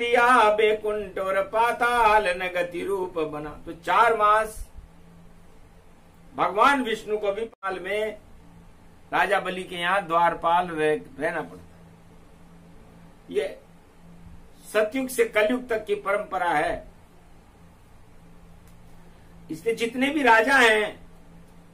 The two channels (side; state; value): both; identical; correlation 1.00